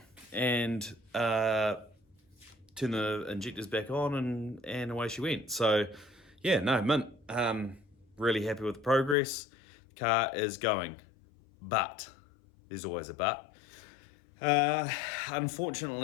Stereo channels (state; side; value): drops out; right; at 9.2 s